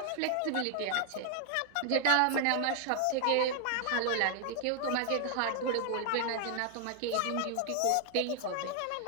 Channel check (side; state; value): both; different; correlation 0.00